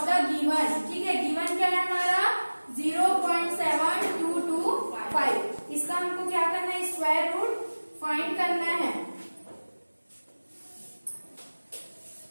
the given. ठीक है, गिवन क्या है हमारा? 0.7225. इसका हमको क्या करना है? स्क्वायर रूट फाइंड करना है.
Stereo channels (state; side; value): inverted; both; correlation -1.00